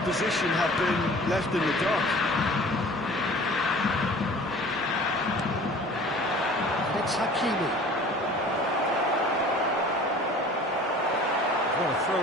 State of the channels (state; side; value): normal; both; correlation 0.46